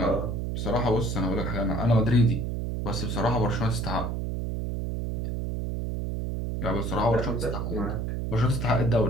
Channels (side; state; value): right; noise; hum, 2 dB below the sound